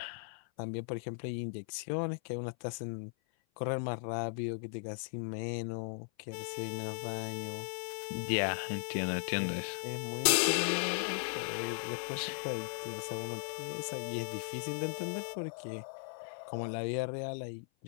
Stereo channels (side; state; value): right; silent; 53 dB below the other